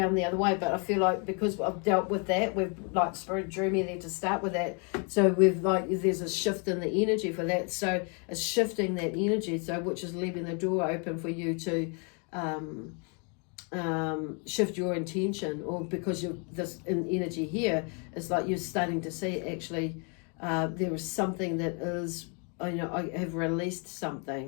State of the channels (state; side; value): quieter; right; 36.6 dB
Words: the other way, but I feel like because I've dealt with that, we've like Spirit drew me there to start with that. So we've like, there's a shift in the energy for that. So it's shifting that energy, so which is leaving the door open for you to shift your intention, or because you're this in energy here, it's like you're starting to see actually there is something that is, you know, I have released